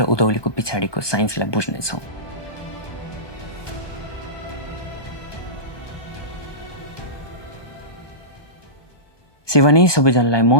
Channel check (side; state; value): right; late; 1.2 ms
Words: उधौलीको पछाडिको साइन्सलाई बुझ्नेछौँ। सेवानी सबैजनालाई म